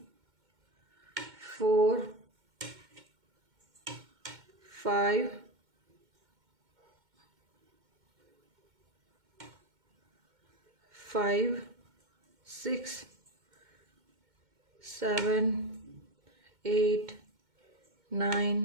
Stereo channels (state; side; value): late; left; 2.1 ms